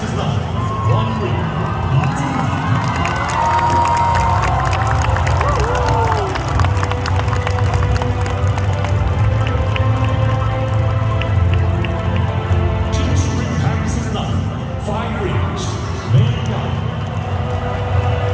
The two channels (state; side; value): identical; both; correlation 1.00